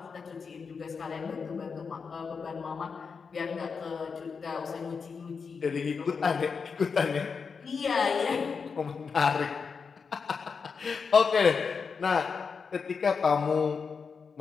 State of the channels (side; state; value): right; quieter; 5.5 dB